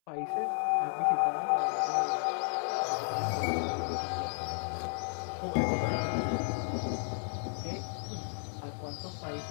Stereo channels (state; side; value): silent; right; 56 dB below the other